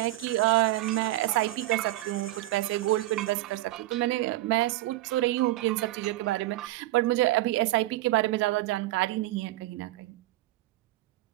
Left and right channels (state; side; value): quieter; left; 16.8 dB